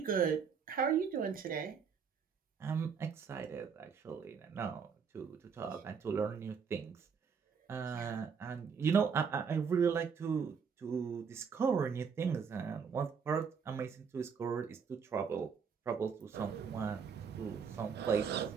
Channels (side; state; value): left; quieter; 6.3 dB